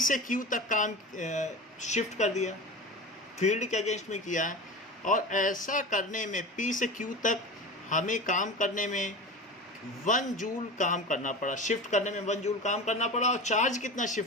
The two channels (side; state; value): both; normal; correlation 0.31